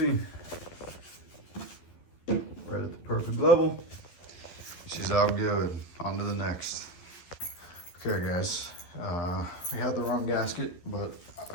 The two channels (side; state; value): right; late; 12 ms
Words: Right at the perfect level. She's all good. On to the next. Okay, guys. We had the wrong gasket, but